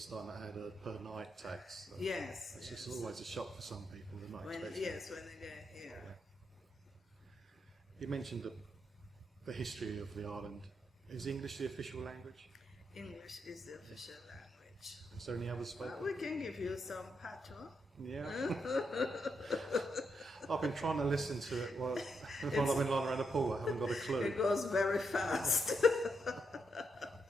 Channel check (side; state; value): both; normal; correlation 0.80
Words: to add a per night tax. So Yes. It's yes. just always a shock for some people. They're not expecting it. Yes, when they get here. You mentioned the history of the island. Is English the official language? English is the official language. Is there any others spoken? We can give you some patois. Yeah. I've been trying to listen to it while I've been lying around the pool. I haven't got a clue. It goes very fast.